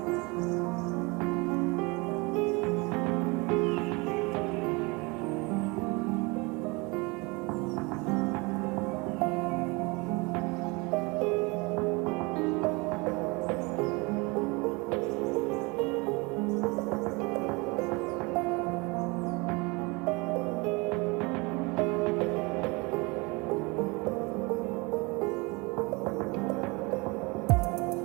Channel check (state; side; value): quieter; left; 26.9 dB